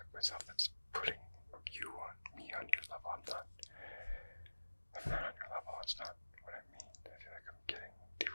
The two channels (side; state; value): both; inverted; correlation -1.00